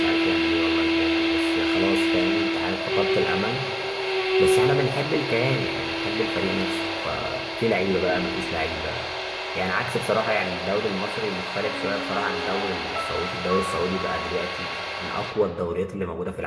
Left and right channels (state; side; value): identical; both; correlation 1.00